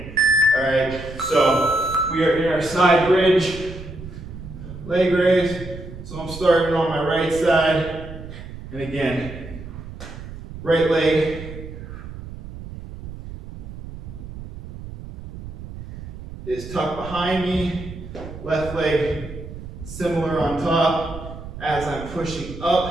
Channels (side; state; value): right; noise; rumble, 12 dB below the sound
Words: All right, so we are in our side bridge, leg raise. So I'm starting on my right side, and again, right leg is tucked behind me, Left leg similar on top. As I'm pushing